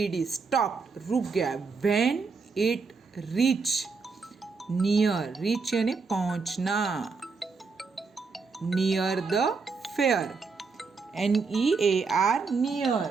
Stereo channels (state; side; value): quieter; left; 4.7 dB